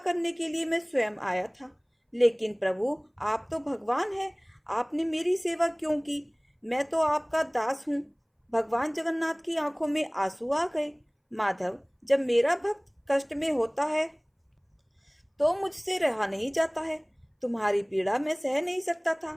के लिए मैं स्वयं आया था। लेकिन प्रभु, आप तो भगवान हैं, आपने मेरी सेवा क्यों की? मैं तो आपका दास हूँ। भगवान जगन्नाथ की आंखों में आंसू आ गए। माधव, जब मेरा भक्त कष्ट में होता है तो मुझसे रहा नहीं जाता है। तुम्हारी पीड़ा मैं सह नहीं सकता था,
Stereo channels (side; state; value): both; identical; correlation 1.00